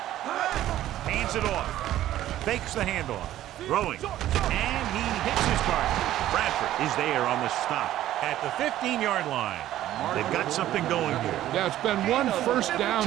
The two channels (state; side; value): quieter; left; 13.4 dB